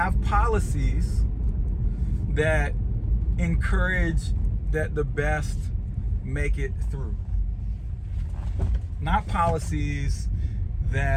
policies that encourage that the best make it through. Not policies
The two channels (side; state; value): both; identical; correlation 1.00